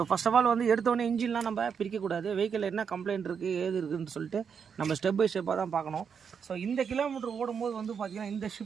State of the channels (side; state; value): left; quieter; 6.8 dB